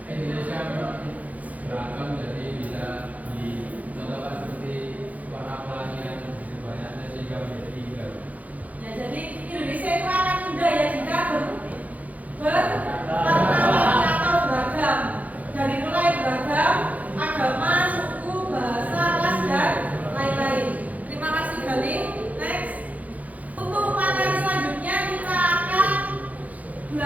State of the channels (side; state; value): left; late; 0.075 ms